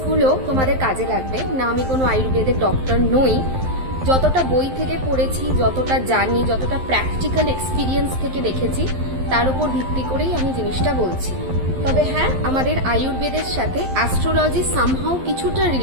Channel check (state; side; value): late; left; 11 ms